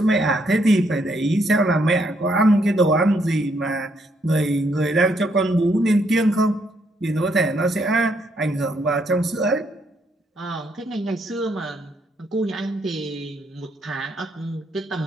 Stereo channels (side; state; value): both; normal; correlation 0.73